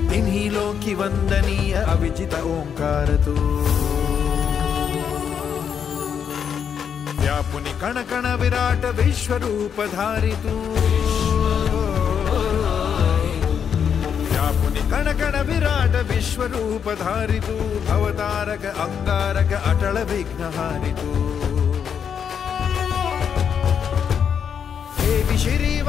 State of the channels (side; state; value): right; quieter; 7.6 dB